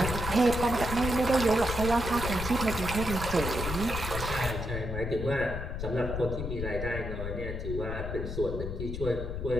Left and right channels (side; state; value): left; noise; rumble, 5 dB below the sound